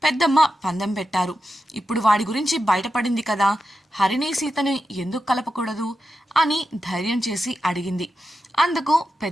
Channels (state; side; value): normal; both; correlation 0.89